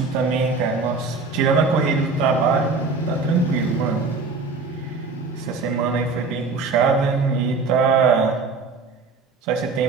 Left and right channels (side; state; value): left; quieter; 4.2 dB